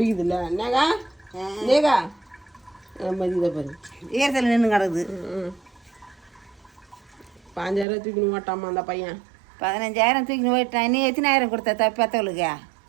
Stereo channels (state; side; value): drops out; left; at 7.9 s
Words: என்னக்கா நேகா நம்ம இதை பாரு ஈரத்தில் நின்று கிடக்குது. 5,000 தூக்கின்னு ஓட்டாமா அந்த பையன். 15,000 தூக்கின்னு போயிட்டான். நீ எத்தனாயிரம் கொடுத்த பெத்தவளுக்கு?